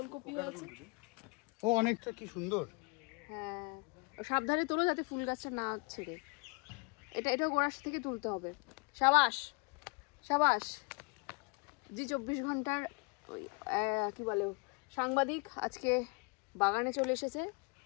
আছে। ও অনেকটা কি সুন্দর। হ্যাঁ, সাবধানে তোলো যাতে ফুল গাছটা না ছেড়ে। এটা গোড়া থেকে তুলতে হবে। সাবাস সাবাস। জি 24 ঘন্টার কি বলে সাংবাদিক আজকে বাগানে চলে এসেছে।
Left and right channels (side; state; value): right; quieter; 30.5 dB